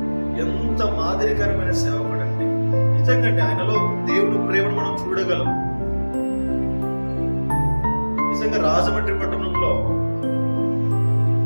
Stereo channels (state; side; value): inverted; both; correlation -1.00